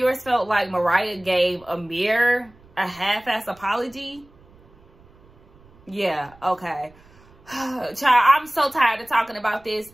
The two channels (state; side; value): noise; right; rumble, 27 dB below the sound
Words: felt like Mariah gave Amir a half-ass apology. Yeah, okay. Child, I'm so tired of talking about this,